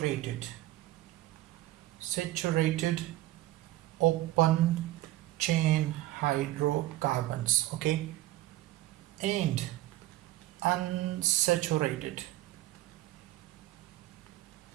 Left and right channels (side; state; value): left; quieter; 16.3 dB